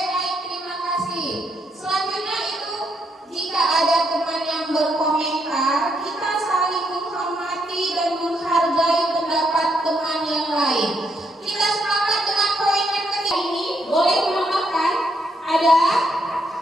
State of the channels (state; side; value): normal; both; correlation 0.76